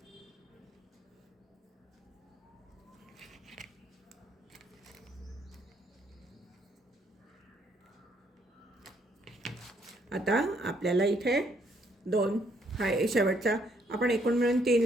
आता आपल्याला इथे 2 हा शेवटचा आपण एकूण मिळून 3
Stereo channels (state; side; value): normal; both; correlation 0.70